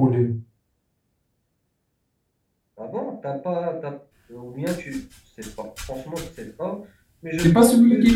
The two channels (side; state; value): both; identical; correlation 1.00